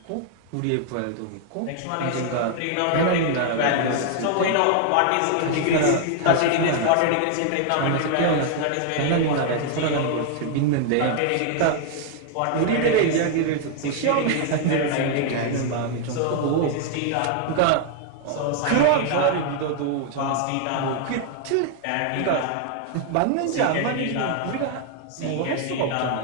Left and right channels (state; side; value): different; both; correlation 0.00